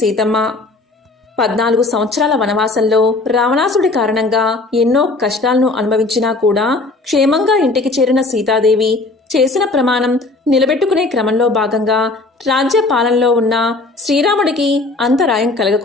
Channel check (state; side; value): quieter; right; 3.3 dB